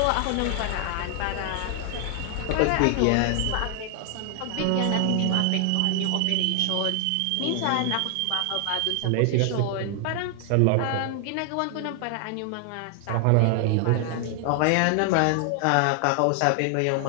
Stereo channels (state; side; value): different; both; correlation 0.00